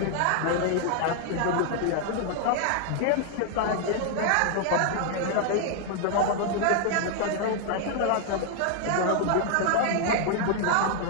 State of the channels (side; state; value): both; different; correlation 0.00